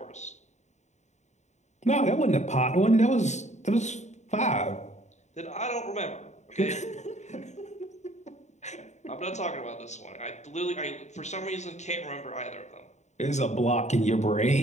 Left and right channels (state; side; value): late; right; 0.34 ms